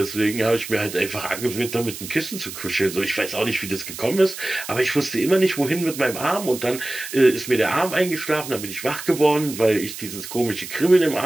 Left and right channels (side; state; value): right; noise; hiss, 10 dB below the sound